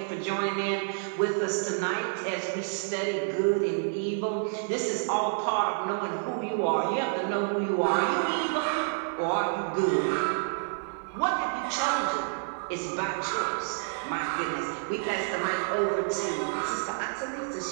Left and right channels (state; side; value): silent; left; 59 dB below the other